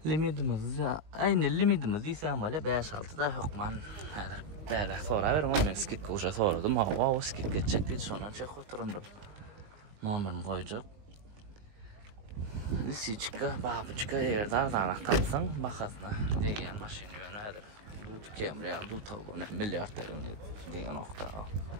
Limitimiz ya aynı limitimiz ise ama 5-6 da yok man. Böyle sonra verim ama skit koşa soradım. O skit geçecek bir sonra çek oturundum. Numaramı koyacak. Lisiçka, babuçka yerde ardanak tapsan bakasına degen maşin yönədir. Camry aldı tavuğunu milyarderine diye nokta.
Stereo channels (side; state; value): left; late; 19 ms